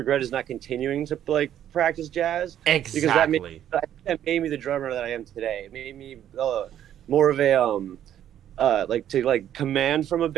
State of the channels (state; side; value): quieter; left; 10.8 dB